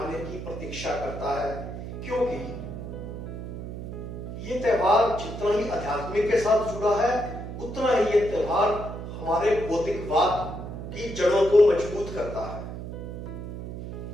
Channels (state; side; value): noise; right; hum, 8 dB below the sound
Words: की प्रतीक्षा करता है, क्योंकि ये त्योहार जितना ही आध्यात्मिक के साथ जुड़ा है, उतना ही ये त्योहार हमारे भौतिकवाद की जड़ों को मजबूत करता है।